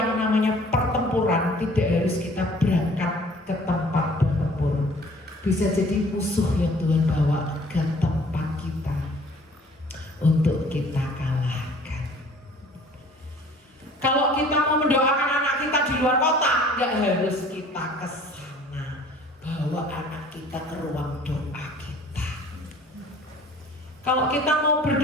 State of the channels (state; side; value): normal; both; correlation 0.51